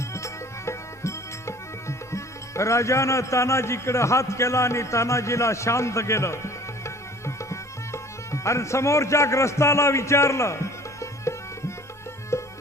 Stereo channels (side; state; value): both; normal; correlation 0.49